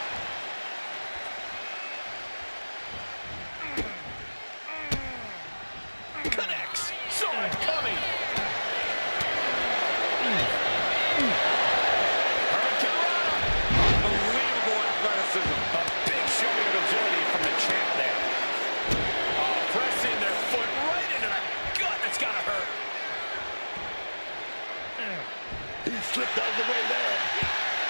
Connects. Saw it coming. slipped out of the way there.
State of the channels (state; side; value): inverted; both; correlation -1.00